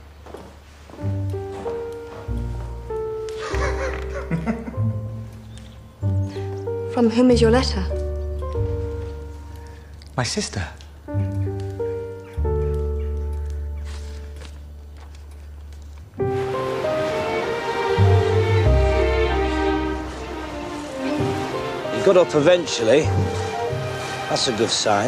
From whom is your letter? My sister. Got up eventually. That's a good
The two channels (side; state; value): both; identical; correlation 1.00